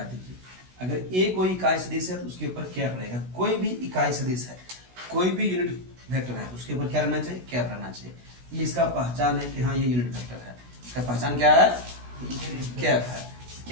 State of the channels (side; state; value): left; late; 16 ms